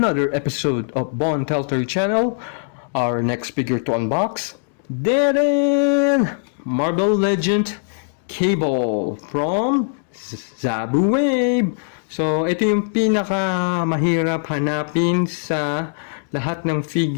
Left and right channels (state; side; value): silent; right; digital silence